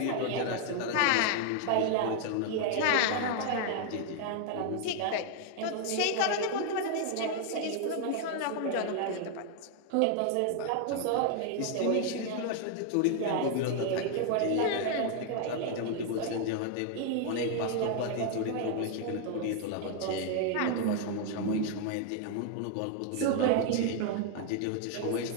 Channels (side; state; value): both; different; correlation 0.00